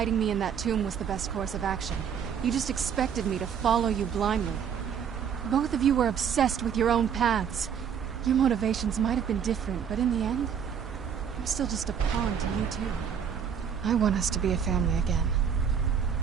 me in that tomb was the best course of action. You just expected me to follow you blindly. Both of you were obsessed with your own paths. Your motivations might have been different, but in the end, I'm still just a pawn to you too. I want us to be a family again.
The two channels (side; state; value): left; quieter; 7.7 dB